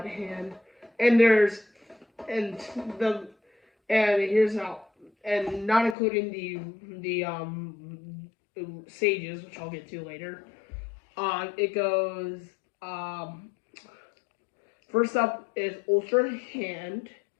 hand. And here's how. And not including the sages, which I'll get to later. It goes, first up is Ultra Hand,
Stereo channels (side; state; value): right; drops out; at 6.0 s